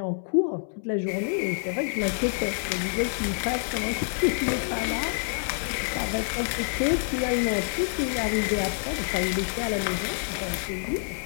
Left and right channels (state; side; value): silent; right; digital silence